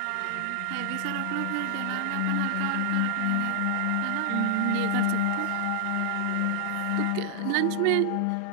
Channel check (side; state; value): both; different; correlation 0.00